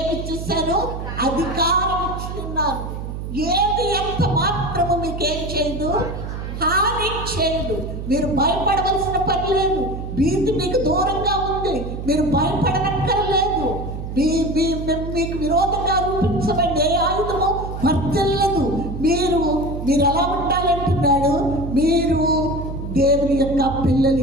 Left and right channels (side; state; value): right; noise; hum, 7 dB below the sound